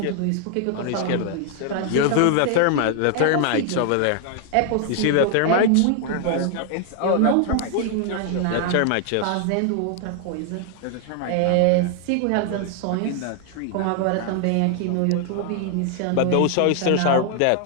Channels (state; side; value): different; both; correlation 0.00